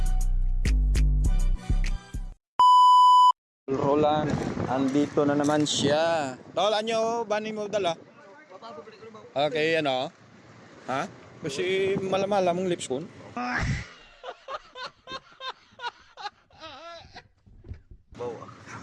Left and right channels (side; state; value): both; identical; correlation 1.00